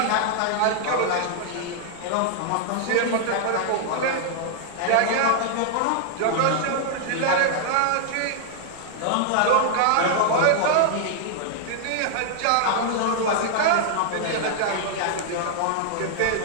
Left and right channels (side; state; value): both; different; correlation -0.01